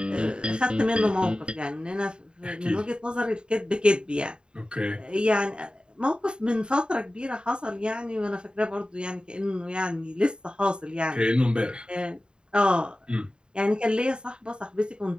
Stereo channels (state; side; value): late; left; 0.050 ms